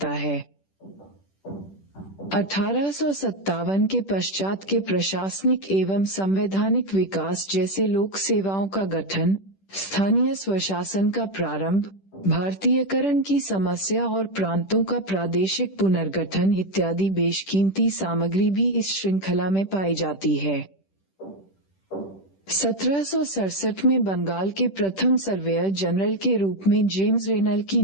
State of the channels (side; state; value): right; late; 10 ms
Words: है। 1857 के पश्चात के प्रशासनिक एवं संवैधानिक विकास जैसे लोक सेवाओं का गठन, स्थानीय स्वशासन का प्रारंभ, भारतीयकरण की समस्या और प्रांतों का प्रादेशिक पुनर्गठन इत्यादि बेशकीमती सामग्री भी इस श्रृंखला में पाई जाती है। 1767 में बंगाल के प्रथम सर्वेयर जनरल के रूप में जेम्स रेनल की